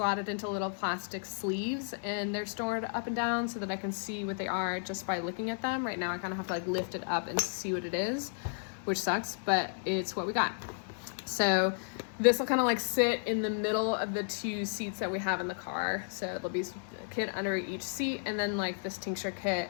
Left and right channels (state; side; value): silent; right; digital silence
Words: into little plastic sleeves, and they're stored up and down so that I can see what they are just by looking at them. Right now I kind of have to like lift it up and see what it is, which sucks, but it's what we got. So this will kind of like sit in the middle of the 2 seats that we have in the car. So there'll be a kit under each seat, and then like this tincture